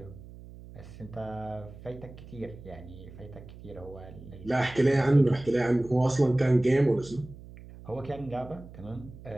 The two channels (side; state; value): right; noise; hum, 17 dB below the sound